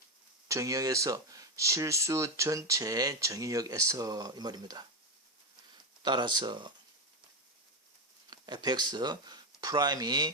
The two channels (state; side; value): normal; both; correlation 0.09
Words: 정의역에서? 실수 전체 정의역에서 이 말입니다. 따라서 fx 프라임이